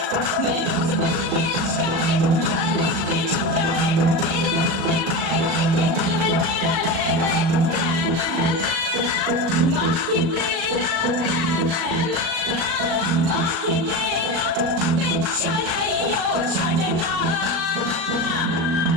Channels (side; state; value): left; late; 38 ms